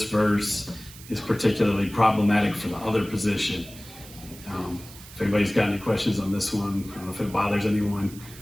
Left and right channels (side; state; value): right; noise; hiss, 18 dB below the sound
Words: verse is particularly problematic for the other position. If anybody's got any questions on this one, I don't know if it bothers anyone.